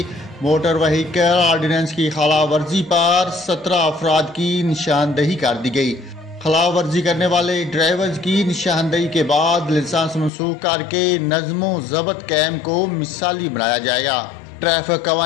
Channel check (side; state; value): right; drops out; at 10.3 s